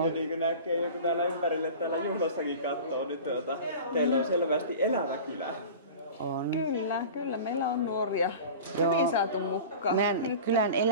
Ja niin kuin näkee joku täällä ympärille täällä juhlassakin katsoo, niin teillä on selvästi elävä kylä. On. Kyllä, meillä on nuoria. Hyvin saatu mukaan. Meidän kylän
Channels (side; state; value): both; inverted; correlation -0.36